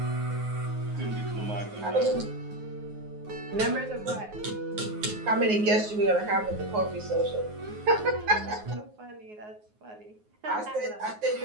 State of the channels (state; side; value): late; left; 9.5 ms